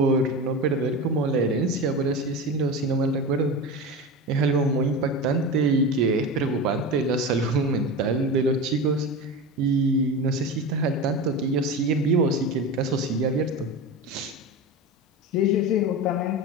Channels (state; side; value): normal; both; correlation 0.25